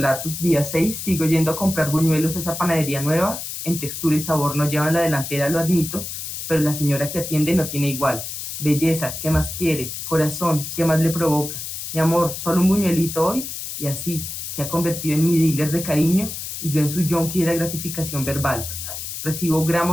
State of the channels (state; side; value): noise; left; hiss, 7 dB below the sound